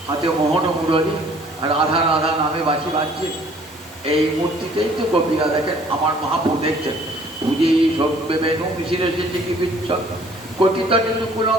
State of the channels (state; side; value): normal; both; correlation 0.56